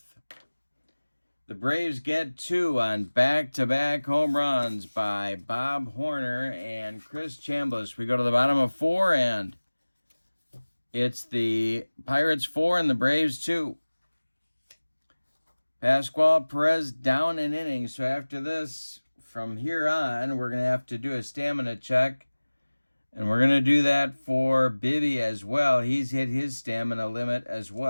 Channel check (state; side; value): inverted; both; correlation -1.00